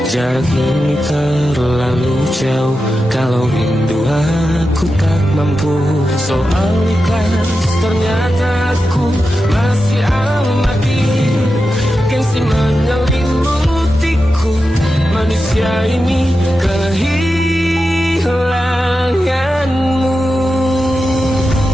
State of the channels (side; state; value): both; normal; correlation 0.90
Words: Jarak ini terlalu jauh, kalau rindu aku tak mampu. Soal ikhlas ternyata aku masih amati, gengsi menyelimutiku. Manusia ini kehilanganmu.